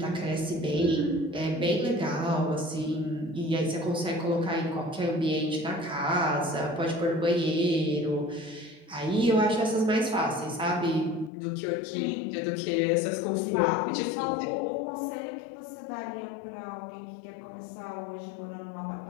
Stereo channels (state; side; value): drops out; right; at 11.3 s